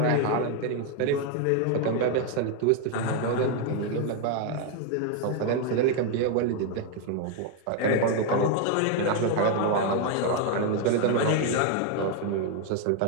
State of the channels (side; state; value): both; different; correlation 0.01